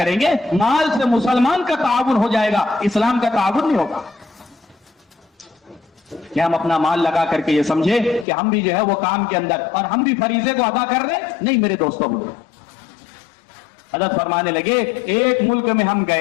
گے۔ مال سے مسلمان کا تعاون ہو جائے گا، اسلام کا تعاون نہیں ہوگا۔ کہ ہم اپنا مال لگا کر کے یہ سمجھے کہ ہم بھی جو ہے وہ کام کے اندر اور ہم بھی فریضے کو ادا کر رہے ہیں، نہیں میرے دوستوں۔ حضرت فرمانے لگے ایک ملک میں ہم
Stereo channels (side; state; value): right; drops out; at 8.2 s